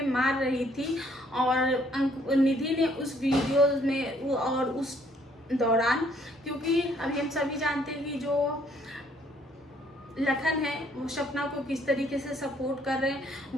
मार रही थी और निधि ने उस वीडियो में और उस दौरान, क्योंकि अभी हम सभी जानते हैं कि जो लखन है वो सपना को किस तरीके से सपोर्ट कर रहे हैं।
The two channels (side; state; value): both; normal; correlation 0.65